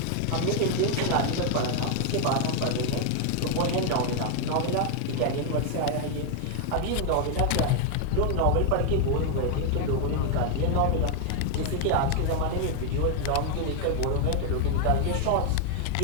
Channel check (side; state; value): both; different; correlation 0.00